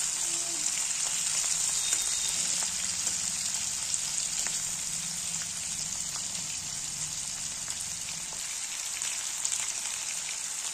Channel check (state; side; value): identical; both; correlation 1.00